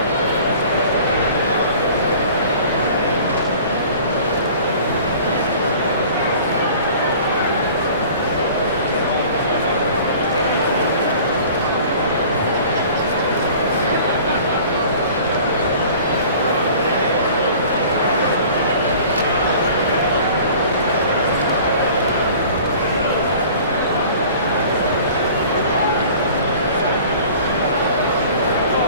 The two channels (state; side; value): inverted; both; correlation -0.46